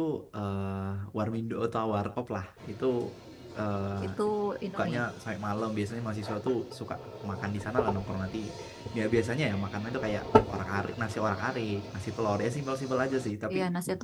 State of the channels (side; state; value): both; identical; correlation 1.00